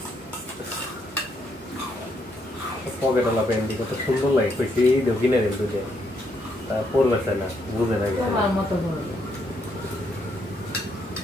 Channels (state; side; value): normal; both; correlation 0.75